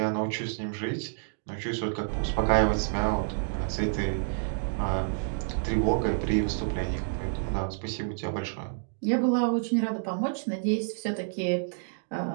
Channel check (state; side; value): silent; left; digital silence